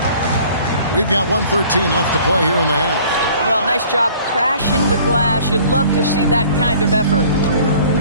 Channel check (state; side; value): inverted; both; correlation -0.52